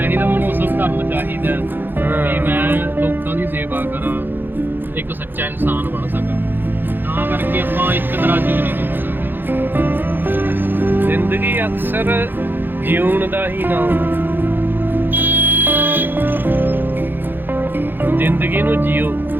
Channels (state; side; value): late; left; 0.096 ms